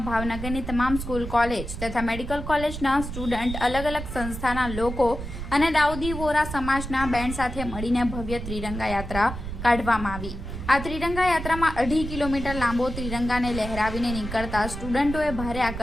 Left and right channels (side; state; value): right; noise; rumble, 8 dB below the sound